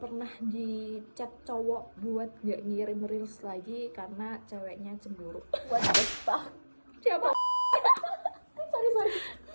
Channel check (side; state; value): both; inverted; correlation -1.00